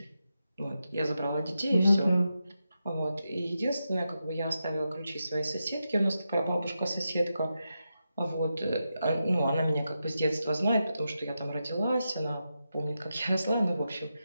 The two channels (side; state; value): both; inverted; correlation -0.88